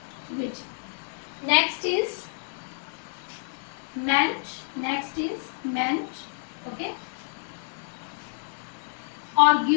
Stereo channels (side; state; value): right; silent; 59 dB below the other